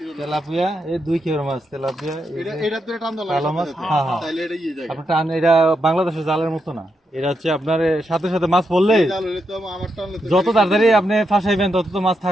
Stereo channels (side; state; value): both; normal; correlation 0.83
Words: তেলাপিয়া এই 2 কিলোর মাছ তেলাপিয়া এটা ধরে টান দাও কালো মাছ হ্যাঁ হ্যাঁ তাইলে এটা ইয়ে যায়। আপনার টান এটা বাংলাদেশের জালের মতো না এটা হচ্ছে আপনার সাথে সাথে মাছ পড়লে জাল হলে তো আমার টানলে তো যত তাড়াতাড়ি আপনি ফাঁসাইবেন তত তো মাছ